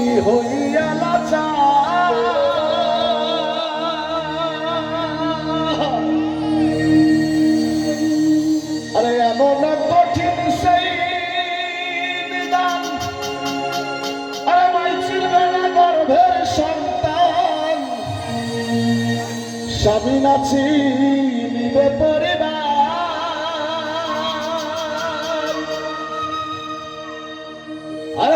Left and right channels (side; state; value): both; identical; correlation 1.00